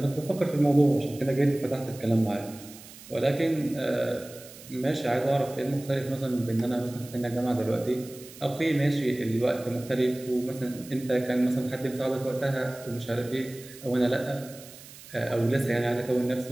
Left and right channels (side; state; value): right; noise; hiss, 18 dB below the sound